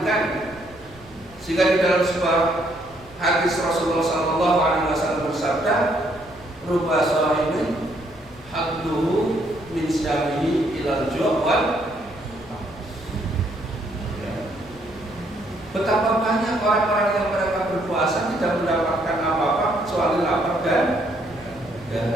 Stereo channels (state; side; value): noise; right; rumble, 23 dB below the sound